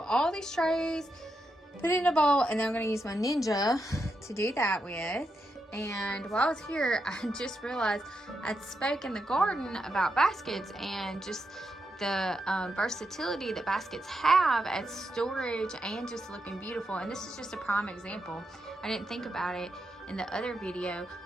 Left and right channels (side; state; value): both; normal; correlation 0.84